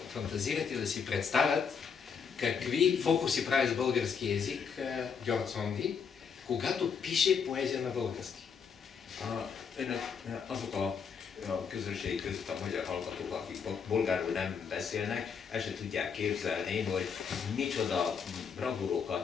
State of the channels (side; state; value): right; quieter; 6.4 dB